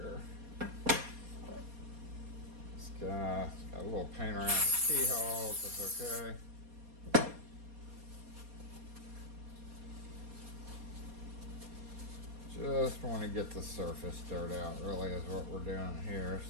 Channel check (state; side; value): late; left; 4.2 ms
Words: It's got a little paint around the keyhole, that's okay. Just want to get the surface dirt out, really, is what we're doing here.